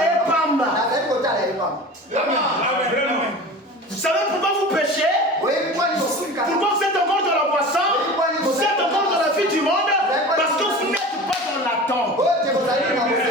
Vous savez pourquoi vous péchez? Pourquoi vous êtes encore dans la boisson? Vous êtes encore dans la vie du monde? Parce que vous n'êtes pas dans l'attente.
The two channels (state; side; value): normal; both; correlation 0.35